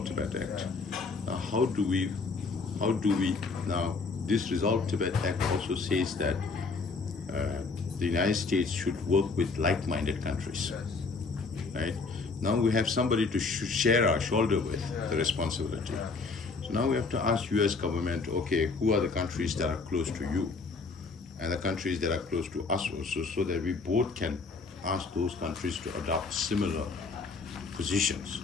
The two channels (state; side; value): quieter; right; 4.2 dB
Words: Tibet Act. Now how do we, now this Resolve Tibet Act also says that the United States should work with like-minded countries, right? Now we have somebody to share our shoulder with the responsibility. So now we have to ask US government, okay, who are the countries that are close to you and the countries that are close to us also, so that we both can ask those countries to adopt similar positions,